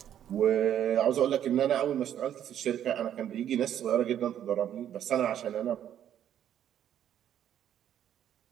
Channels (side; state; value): left; quieter; 10.3 dB